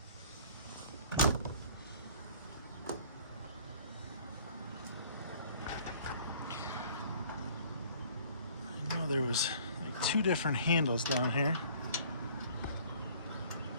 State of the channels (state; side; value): inverted; both; correlation -0.54